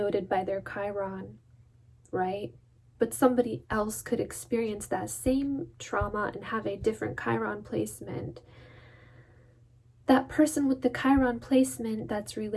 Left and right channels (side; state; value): both; identical; correlation 1.00